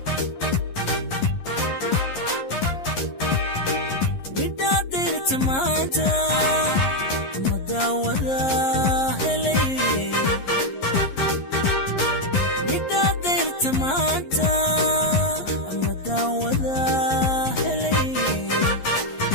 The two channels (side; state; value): right; late; 11 ms